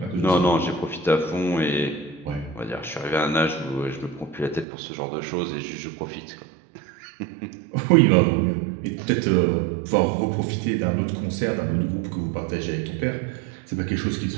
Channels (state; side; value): drops out; left; at 4.7 s